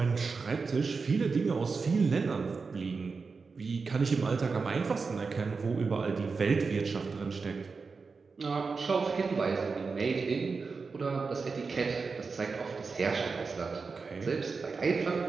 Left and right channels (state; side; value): quieter; left; 4.7 dB